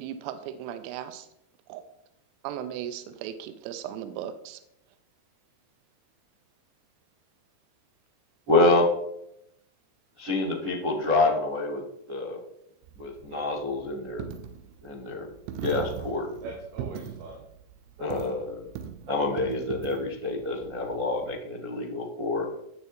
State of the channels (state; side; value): late; left; 21 ms